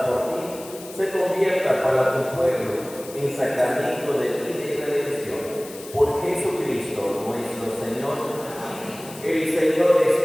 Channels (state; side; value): noise; left; hiss, 17 dB below the sound